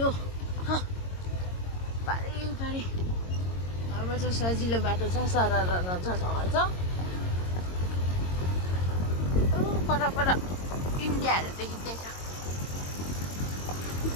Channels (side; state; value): right; late; 22 ms